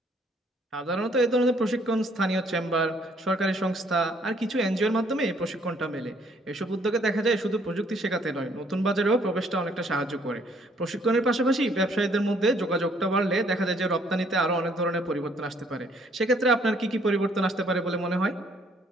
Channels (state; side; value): normal; both; correlation 0.64